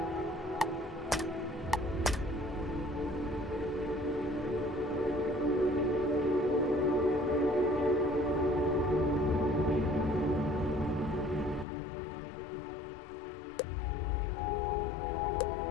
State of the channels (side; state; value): right; drops out; at 11.7 s